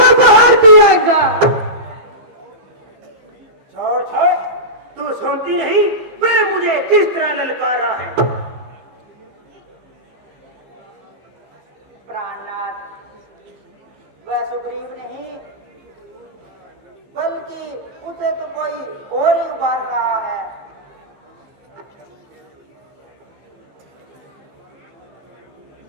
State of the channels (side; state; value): left; late; 15 ms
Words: बाहर पिएगा? छोड़ छोड़, तू सुनती नहीं वह मुझे किस तरह ललकार रहा है। प्राणनाथ, वह सुग्रीव नहीं बल्कि उसे तो कोई और ही उबार रहा है।